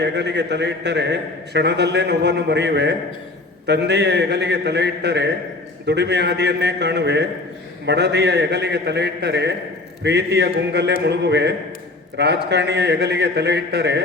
ಹೆಗಲಿಗೆ ತಲೆ ಇಟ್ಟರೆ ಕ್ಷಣದಲ್ಲೇ ನೋವನ್ನು ಮರೆಯುವೆ. ತಂದೆಯ ಹೆಗಲಿಗೆ ತಲೆ ಇಟ್ಟರೆ ದುಡಿಮೆ ಹಾದಿಯನ್ನೇ ಕಾಣುವೆ. ಮಡದಿಯ ಹೆಗಲಿಗೆ ತಲೆ ಇಟ್ಟರೆ ಪ್ರೀತಿಯ ಗುಂಗಲ್ಲೇ ಮುಳುಗುವೆ. ರಾಜಕಾರಣಿಯ ಹೆಗಲಿಗೆ ತಲೆ ಇಟ್ಟರೆ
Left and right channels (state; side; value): quieter; right; 3.1 dB